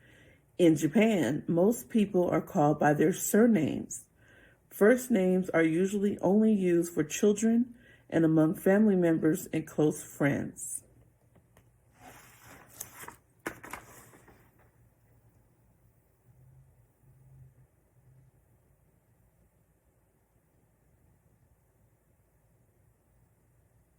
In Japan, most people are called by their surnames. First names are usually only used for children and among family members and close friends.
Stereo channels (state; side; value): identical; both; correlation 1.00